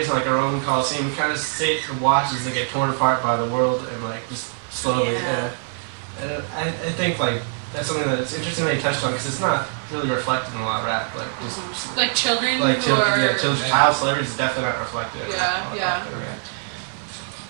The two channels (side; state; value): left; silent; 63 dB below the other